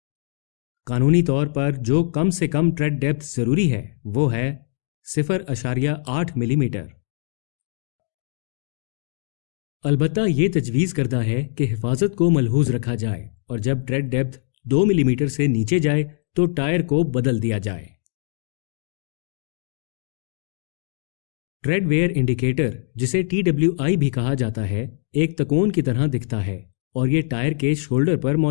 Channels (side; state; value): right; silent; digital silence